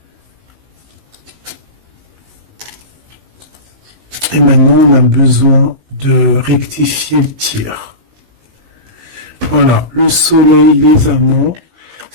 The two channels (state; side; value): late; left; 19 ms